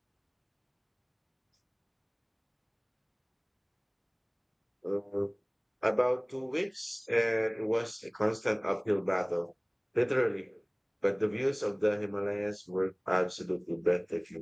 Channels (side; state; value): both; identical; correlation 1.00